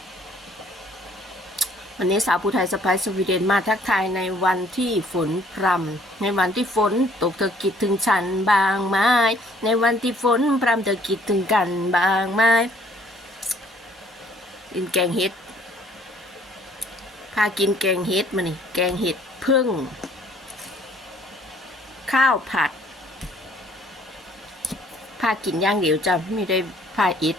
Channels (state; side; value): normal; both; correlation 0.60